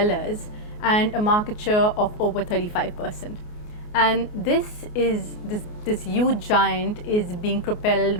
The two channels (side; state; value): right; late; 28 ms